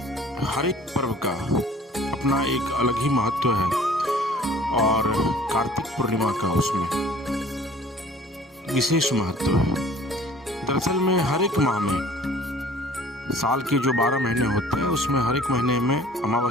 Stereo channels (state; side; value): normal; both; correlation 0.50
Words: हर एक पर्व का अपना एक अलग ही महत्व है और कार्तिक पूर्णिमा का उसमें विशेष महत्व है। दरअसल में हर एक माह में साल के जो 12 महीने होते हैं उसमें हर एक महीने में